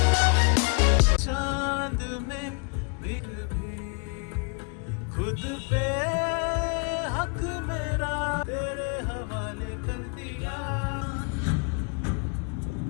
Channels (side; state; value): right; quieter; 36.0 dB